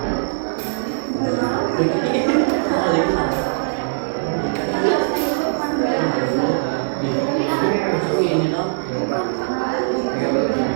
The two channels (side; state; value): left; silent; digital silence